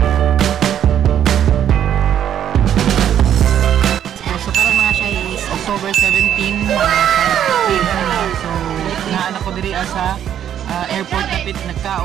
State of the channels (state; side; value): quieter; left; 10.0 dB